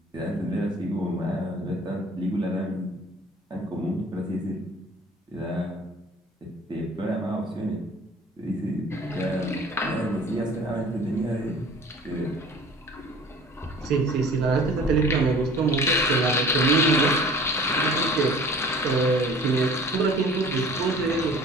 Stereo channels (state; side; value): normal; both; correlation 0.47